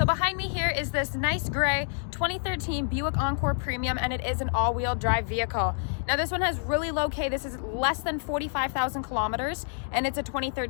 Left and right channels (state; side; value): silent; right; 56 dB below the other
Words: behind me here is this nice gray 2013 Buick Encore Premium, and it is an all-wheel drive vehicle. Now this one has really low K. This is less than 45,000 kilometers, and it's a